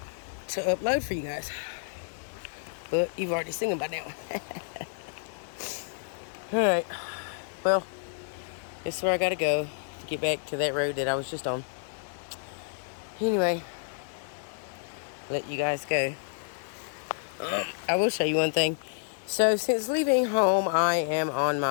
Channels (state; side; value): silent; right; 58 dB below the other